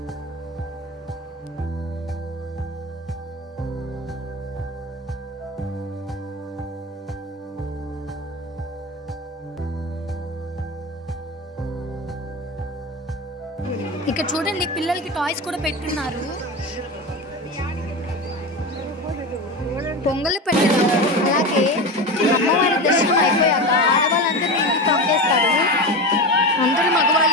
ఇక్కడ చూడండి, పిల్లలకి టాయ్స్ కూడా పెట్టున్నారు. పొంగలు పెట్టడం, అలాగే అమ్మవారి దర్శనం అయిపోయాక ఆడవాళ్ళందరినీ ఇంటికి పంపేస్తారు. అందరూ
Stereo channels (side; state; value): both; normal; correlation 0.23